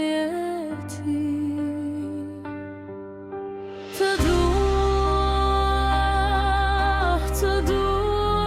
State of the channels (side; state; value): both; identical; correlation 1.00